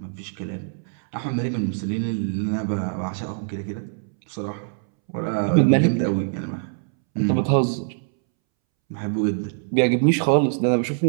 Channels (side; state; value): left; silent; 63 dB below the other